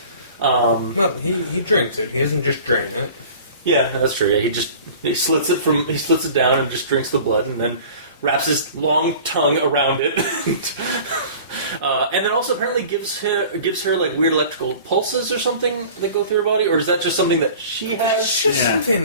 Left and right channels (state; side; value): inverted; both; correlation -0.43